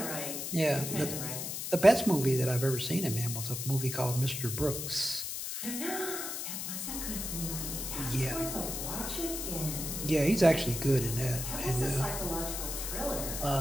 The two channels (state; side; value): noise; left; hiss, 4 dB below the sound